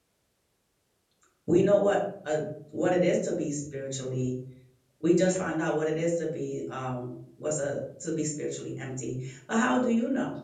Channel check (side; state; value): both; identical; correlation 1.00